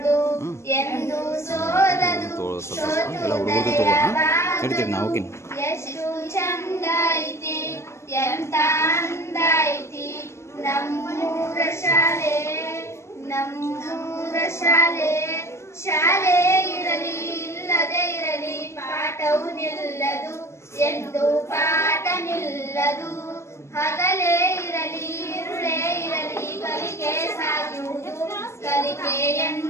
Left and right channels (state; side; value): late; right; 0.13 ms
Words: ಸ್ವಲ್ಪ ಎಲ್ಲ ಹುಡುಗರು ತಗೋ ನಡೀತೀರಿ ನಾವು ಹೋಗಿನಿ. ಎಷ್ಟು ಚಂದ ಐತಿ ಎಂತ ಅಂದ ಐತಿ ನಮ್ಮೂರ ಶಾಲೆ, ನಮ್ಮೂರ ಶಾಲೆ. ಶಾಲೆ ಇರಲಿ ಇಲ್ಲದೆ ಇರಲಿ ಪಾಠವು ನಿಲ್ಲದು, ಎಂದು ಪಾಠ ನಿಲ್ಲದು. ಹಗಲೇ ಇರಲಿ ಇರುಳೇ ಇರಲಿ ಕಲಿಕೆ ಸಾಗುವುದು, ಕಲಿಕೆ